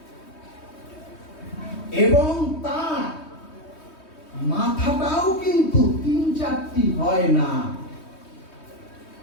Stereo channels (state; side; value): late; right; 3.2 ms